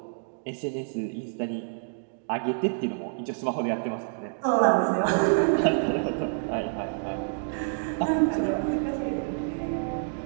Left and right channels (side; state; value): left; silent; digital silence